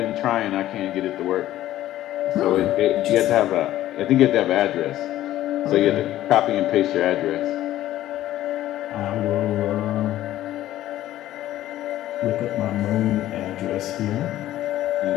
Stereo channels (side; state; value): right; quieter; 13.8 dB